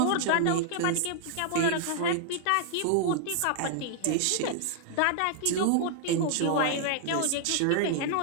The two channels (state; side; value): different; both; correlation -0.01